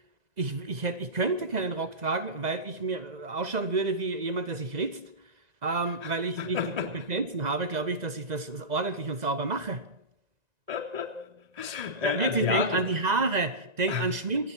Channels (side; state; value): left; late; 2.0 ms